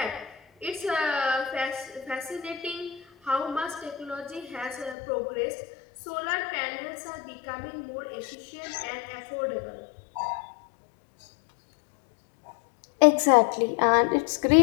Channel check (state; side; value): drops out; right; at 5.0 s